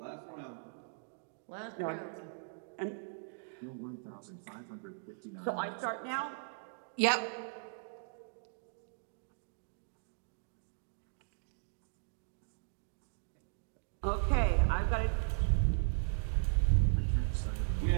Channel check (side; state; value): left; silent; digital silence